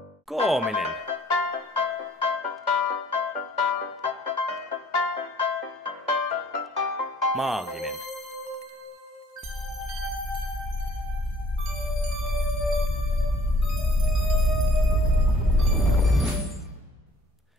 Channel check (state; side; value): normal; both; correlation 0.57